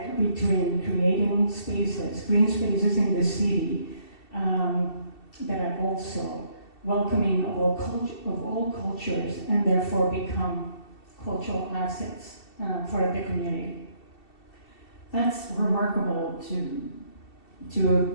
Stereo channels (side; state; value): right; late; 2.7 ms